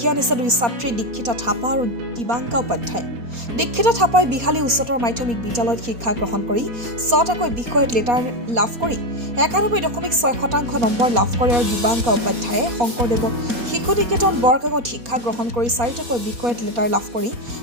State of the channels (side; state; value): left; late; 4.2 ms